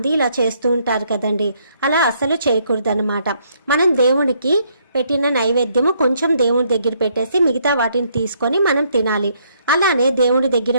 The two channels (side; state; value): both; inverted; correlation -0.70